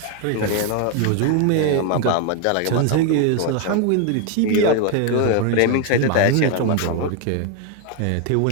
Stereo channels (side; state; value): both; different; correlation 0.01